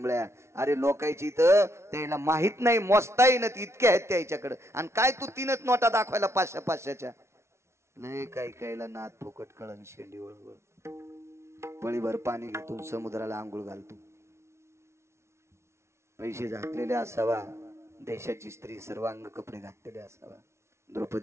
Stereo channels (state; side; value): late; left; 0.13 ms